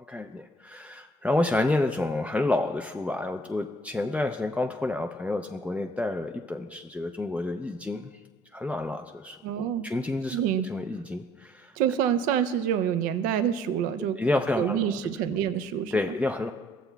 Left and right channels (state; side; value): normal; both; correlation 0.60